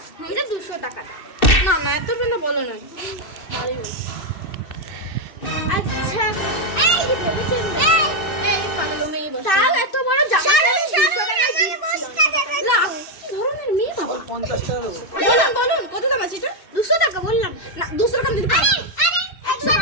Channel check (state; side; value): late; right; 2.7 ms